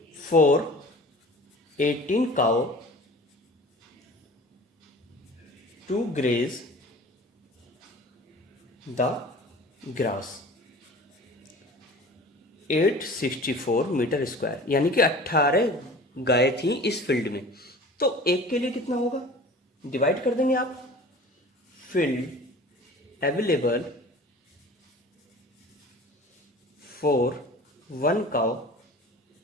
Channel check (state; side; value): normal; both; correlation 0.42